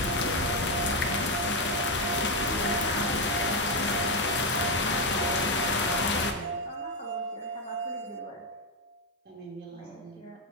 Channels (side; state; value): both; normal; correlation 0.06